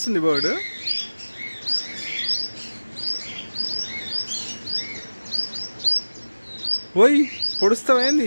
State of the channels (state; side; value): inverted; both; correlation -1.00